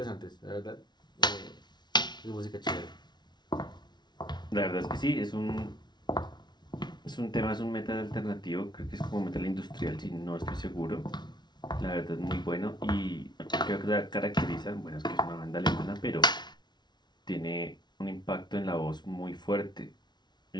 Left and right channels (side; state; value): right; late; 0.20 ms